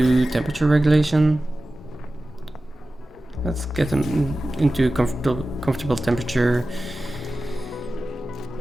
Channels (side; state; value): both; normal; correlation 0.95